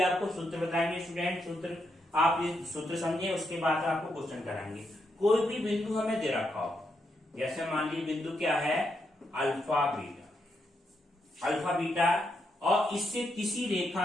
आपको सूत्र बताएंगे स्टूडेंट, सूत्र आप ये सूत्र समझे, उसके बाद आपको क्वेश्चन कराएंगे। कोई भी बिंदु हमें दे रखा हो, जैसे मान लीजिए बिंदु क्या है, अल्फा बीटा, और इससे किसी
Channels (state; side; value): normal; both; correlation 0.81